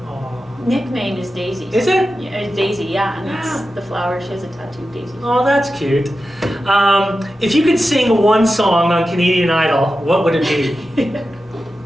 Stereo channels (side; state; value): both; normal; correlation 0.92